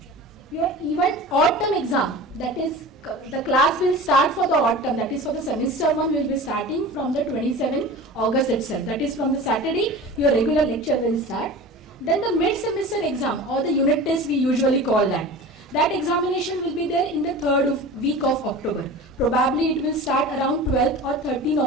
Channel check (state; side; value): normal; both; correlation 0.35